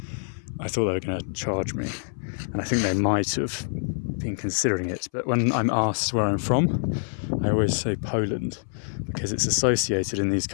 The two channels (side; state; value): right; silent; 59 dB below the other